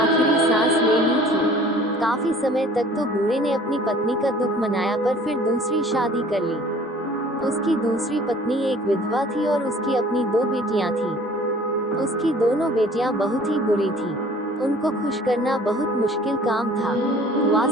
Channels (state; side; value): normal; both; correlation 0.50